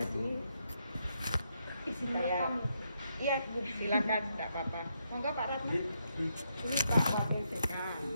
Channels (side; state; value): both; inverted; correlation -0.79